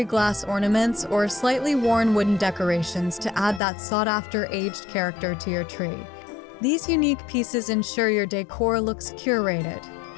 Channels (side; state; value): right; drops out; at 3.6 s